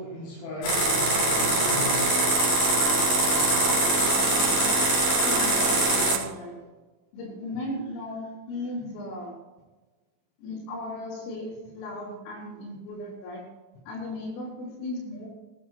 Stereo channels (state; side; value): late; right; 30 ms